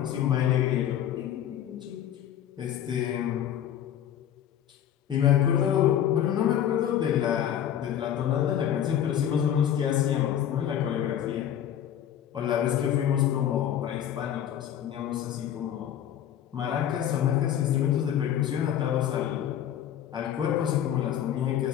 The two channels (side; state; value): right; quieter; 10.3 dB